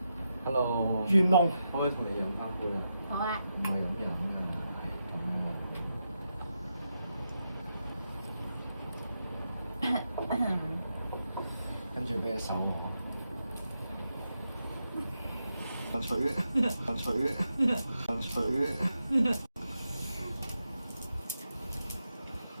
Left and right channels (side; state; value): both; inverted; correlation -0.86